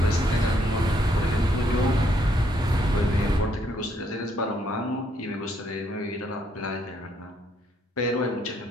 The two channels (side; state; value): both; normal; correlation 0.71